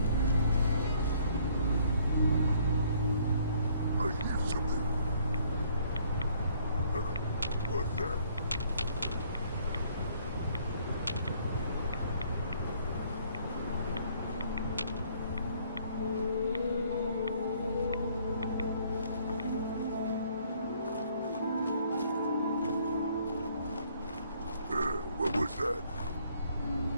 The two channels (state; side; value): inverted; both; correlation -0.62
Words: I hear something. What's that? What was that?